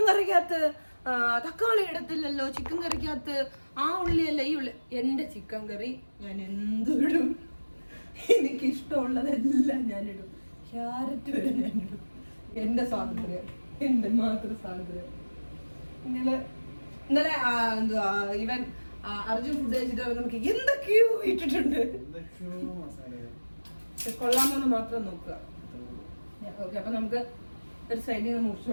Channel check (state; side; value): inverted; both; correlation -1.00